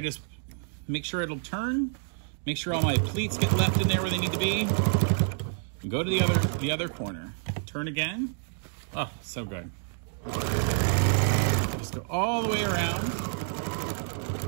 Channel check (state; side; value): silent; left; 59 dB below the other